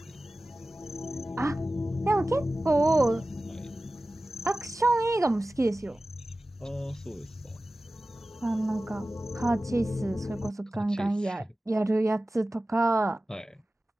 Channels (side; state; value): both; normal; correlation 0.96